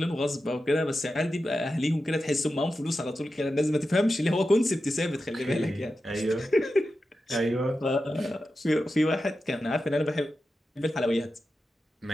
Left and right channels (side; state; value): both; normal; correlation 0.91